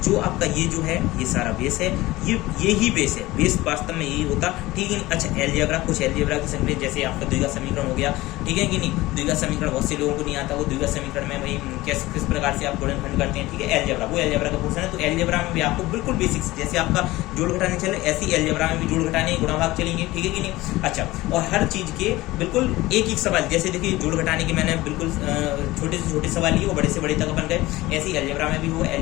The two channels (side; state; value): right; quieter; 18.7 dB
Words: आपका ये जो है ये सारा बेस है, ये ही बेस है, बेस वास्तव में यही होता, ठीक है। अच्छा, एलजेब्रा, कुछ एलजेब्रा की संख्या, जैसे आपका द्विघात समीकरण हो गया, ठीक है कि नहीं। द्विघात समीकरण बहुत से लोगों को नहीं आता, वो द्विघात समीकरण में भाई किस प्रकार से आप गुणनखंड करते हैं, ठीक है। एलजेब्रा, वो एलजेब्रा का पोर्शन है, तो एलजेब्रा में भी आपको बिल्कुल बेसिक्स, जैसे आपका जोड़ घटाने चले ऐसी एलजेब्रा में भी जोड़ घटाने गुणा भाग चलेंगे, ठीक है कि नहीं। अच्छा, और हर चीज के बिल्कुल एक सवाल, जैसे देखिए जोड़ घटाने के मैंने बिल्कुल छोटे से छोटे सवाल लिए, वो बड़े से बड़े तक अपन गए। ऐसे ही एलजेब्रा में भी हो,